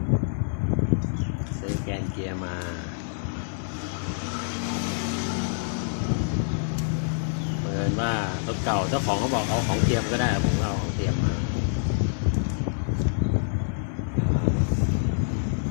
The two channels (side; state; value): right; silent; 61 dB below the other